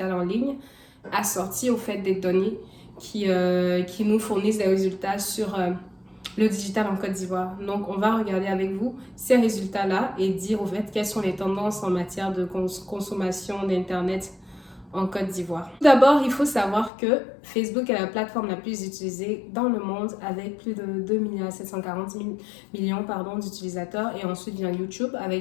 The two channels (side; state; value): right; drops out; at 16.9 s